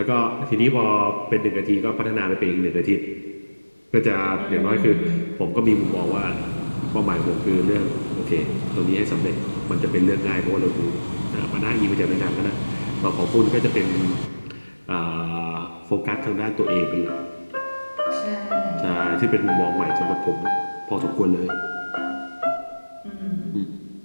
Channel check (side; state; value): both; inverted; correlation -1.00